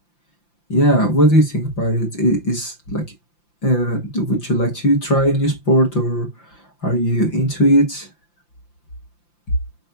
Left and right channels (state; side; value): late; right; 5.8 ms